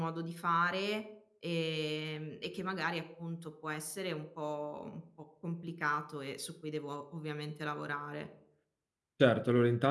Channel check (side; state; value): both; identical; correlation 1.00